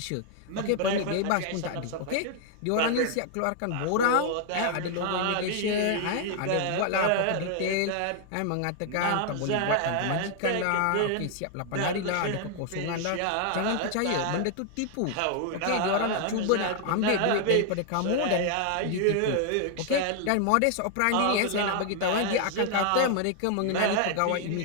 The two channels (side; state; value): both; different; correlation 0.00